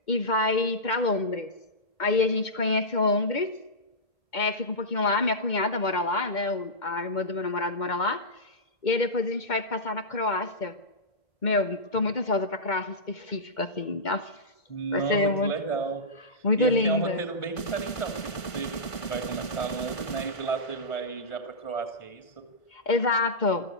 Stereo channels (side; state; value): right; late; 1.5 ms